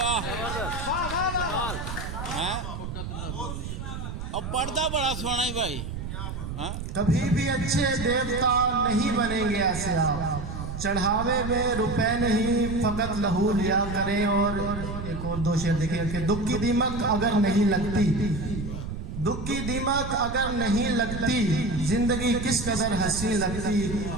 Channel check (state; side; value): noise; right; rumble, 7 dB below the sound